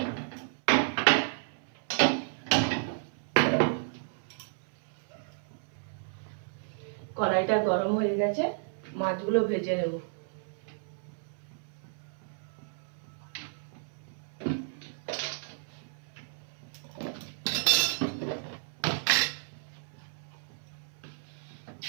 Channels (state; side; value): silent; left; 56 dB below the other